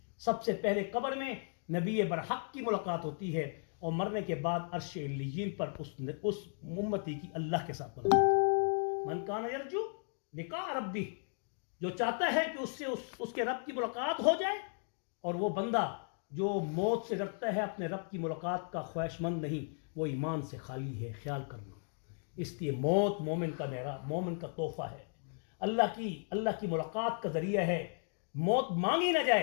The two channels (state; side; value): silent; right; 54 dB below the other